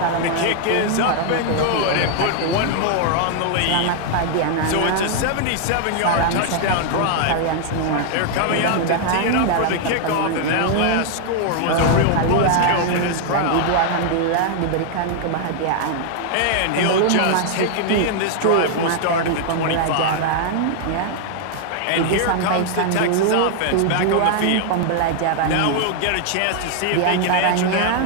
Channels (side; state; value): both; different; correlation 0.00